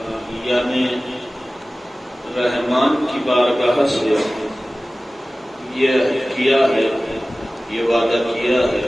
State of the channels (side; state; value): both; normal; correlation 0.97